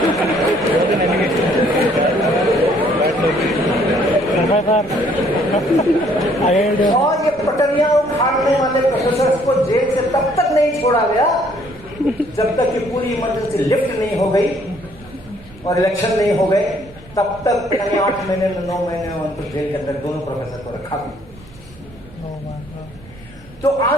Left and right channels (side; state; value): right; noise; rumble, 22 dB below the sound